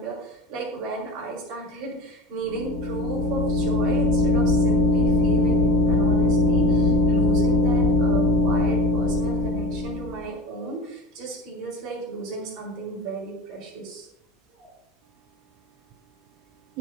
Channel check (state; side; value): normal; both; correlation 0.33